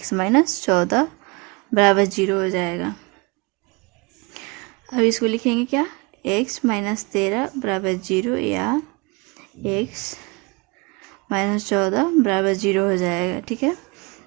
माइनस 14 बराबर 0 हो जाएगा। अब इसको लिखेंगे क्या x माइनस 13 बराबर 0 या x माइनस 14 बराबर 0 हो जाएगा, ठीक है।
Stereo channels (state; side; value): quieter; left; 27.7 dB